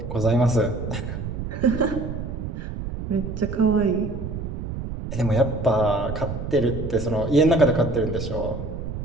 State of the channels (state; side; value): noise; right; rumble, 6 dB below the sound